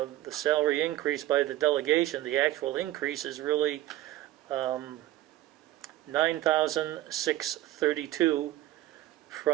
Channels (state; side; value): quieter; left; 15.1 dB